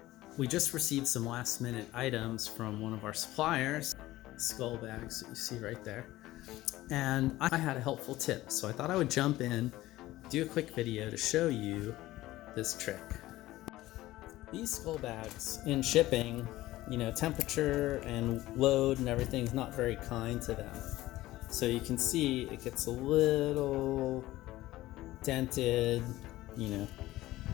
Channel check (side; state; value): right; quieter; 16.7 dB